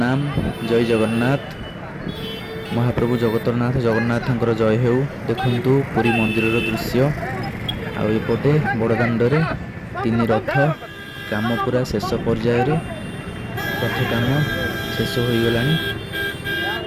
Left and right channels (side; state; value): both; identical; correlation 1.00